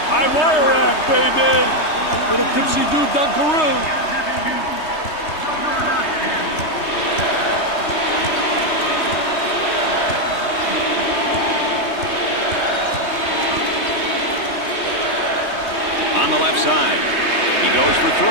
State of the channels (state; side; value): late; right; 3.2 ms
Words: High wire rack, baby. Little tipsy-do dunkaroo. On the left side. He goes for